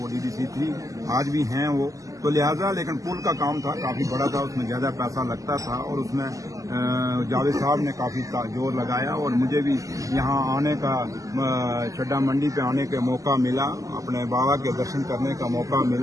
वो डीडीसी थी, आज भी हैं वो, तो लिहाजा लेकिन पुल का काम था काफ़ी बड़ा था, उसमें ज़्यादा पैसा लगता था और उसमें जावेद साहब ने काफ़ी जोर लगाया और मुझे भी यहाँ आने का चड्डा मंडी पे आने का मौका मिला, अपने बाबा के दर्शन करने का मौका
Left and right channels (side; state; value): left; late; 0.16 ms